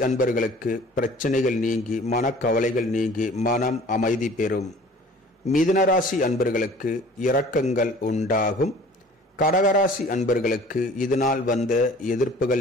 அன்பர்களுக்கு பிரச்சனைகள் நீங்கி மனக்கவலைகள் நீங்கி மனம் அமைதி பெறும். மிதுனராசி அன்பர்களுக்கு இரக்கங்கள் உண்டாகும். கடகராசி அன்பர்களுக்கு இதுநாள் வந்த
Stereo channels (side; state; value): both; normal; correlation 0.48